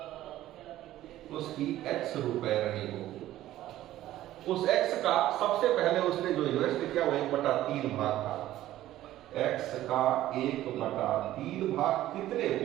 उसकी x रुपए रही होगी। उस x का सबसे पहले उसने जो इन्वेस्ट किया वो 1/3 भाग था। x का 1/3 भाग कितने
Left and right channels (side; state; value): left; quieter; 14.2 dB